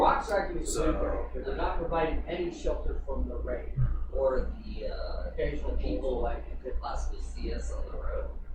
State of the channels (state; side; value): identical; both; correlation 1.00